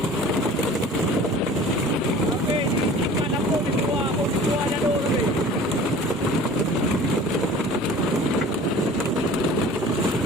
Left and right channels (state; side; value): normal; both; correlation 0.44